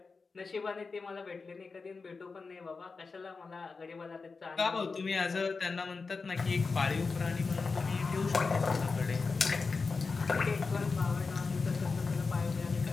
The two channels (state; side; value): quieter; right; 4.4 dB